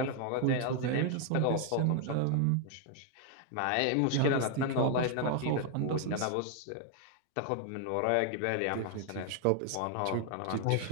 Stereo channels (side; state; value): both; different; correlation 0.00